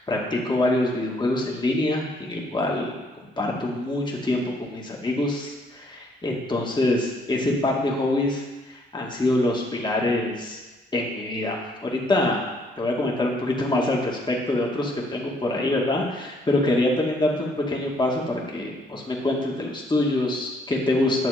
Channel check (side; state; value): both; normal; correlation 0.67